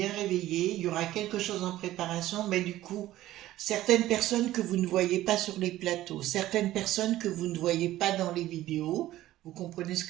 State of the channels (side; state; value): left; quieter; 14.9 dB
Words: réveillés. Il y aura quelque chose en préparation, mais du coup, certaines personnes que vous ne voyez pas sur les plateaux, certaines personnes que vous ne voyez pas dans les vidéos, vous comprenez ce